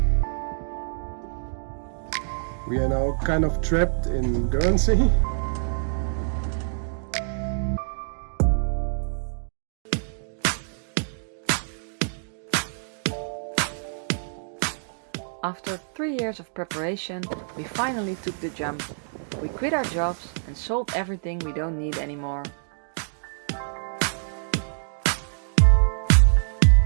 We are now kind of trapped in Guernsey. After 3 years of preparation, we finally took the jump. We quit our jobs and sold everything we don't need anymore.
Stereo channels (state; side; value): silent; left; digital silence